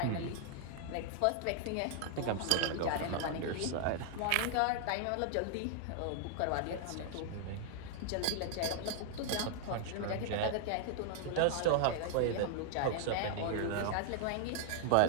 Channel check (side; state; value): both; different; correlation -0.01